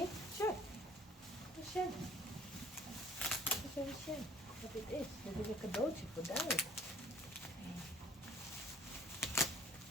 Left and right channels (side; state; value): both; normal; correlation 0.52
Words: Sure. Shen. Shen. Wat dit is? Dit is een cadeautje voor Dijk.